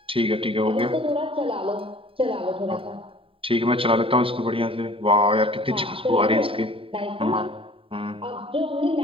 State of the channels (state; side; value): late; left; 0.26 ms